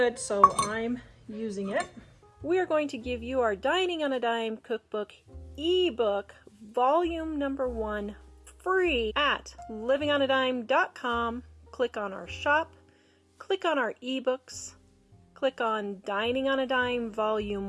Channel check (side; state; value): both; identical; correlation 1.00